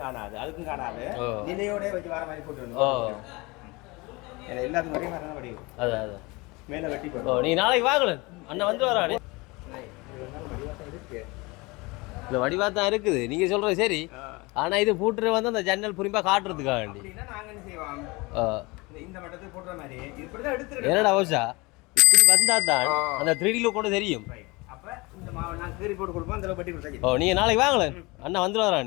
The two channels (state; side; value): quieter; right; 24.7 dB